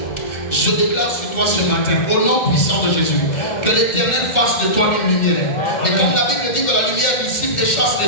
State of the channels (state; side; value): late; right; 2.1 ms